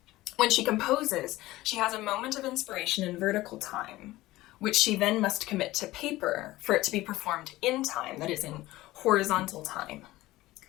When she composes, she has a moment of inspiration in vertical time, which she then must commit to paper for it to be performed in time, that is, in horizontal time.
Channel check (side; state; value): right; quieter; 17.6 dB